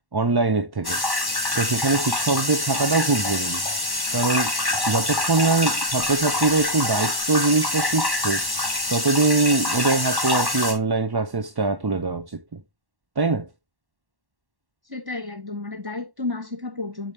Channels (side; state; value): left; late; 1.1 ms